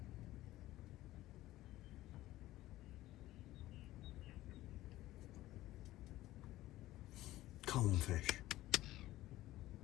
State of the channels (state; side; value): quieter; right; 16.0 dB